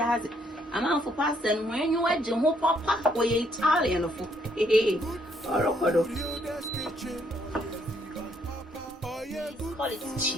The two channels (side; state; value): both; normal; correlation 0.70